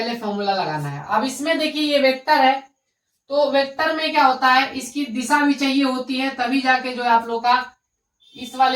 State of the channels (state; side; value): identical; both; correlation 1.00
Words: फॉर्मूला लगाना है। अब इसमें देखिए ये वेक्टर है, तो वेक्टर में क्या होता है, इसकी दिशा भी चाहिए होती है, तभी जाके जो है आप लोग का इस